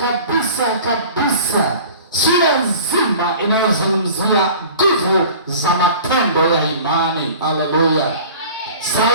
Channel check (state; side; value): inverted; both; correlation -0.43